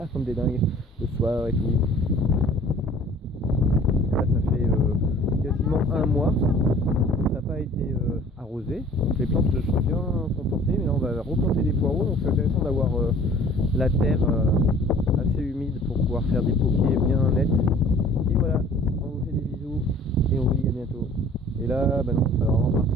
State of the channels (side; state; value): both; normal; correlation 0.50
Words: comme des dingues le soir et tout. Là, ça fait quasiment un mois que ça n'a pas été arrosé. Donc les plantes se sont bien comportées. Mais là, on va replanter des poireaux. Donc c'est intéressant d'avoir la terre assez humide pour pouvoir faire des poquets bien nets. Et voilà, on vous fait des bisous et on vous dit à bientôt. Et là, non, il va vraiment